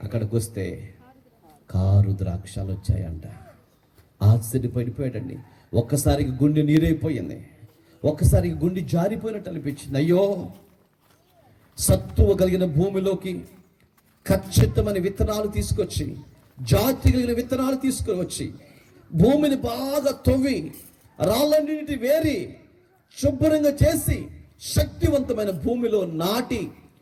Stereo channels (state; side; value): identical; both; correlation 1.00